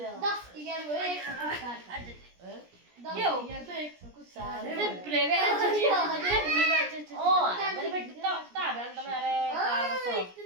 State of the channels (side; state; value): left; late; 17 ms